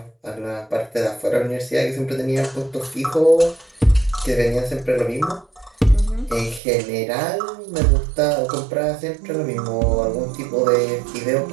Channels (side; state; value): left; drops out; at 6.6 s